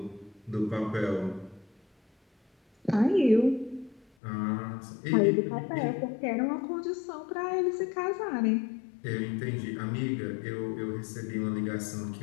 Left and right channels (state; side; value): drops out; right; at 4.0 s